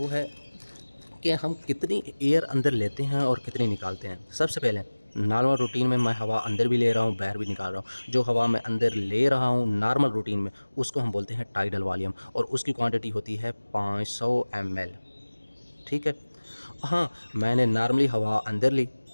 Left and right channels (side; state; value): both; inverted; correlation -1.00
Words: है कि हम कितनी एयर अंदर लेते हैं और कितनी निकालते हैं। सबसे पहले नॉर्मल रूटीन में मैं हवा अंदर भी ले रहा हूँ, बाहर भी निकाल रहा हूँ। जो हवा मैं अंदर ले रहा हूँ नॉर्मल रूटीन में उसको हम बोलते हैं टाइडल वॉल्यूम, और उसकी क्वांटिटी होती है 500 ml, ठीक है। हाँ, मैंने नॉर्मली हवा अंदर ली,